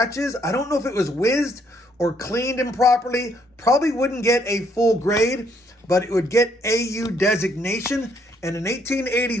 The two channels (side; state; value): both; normal; correlation 0.69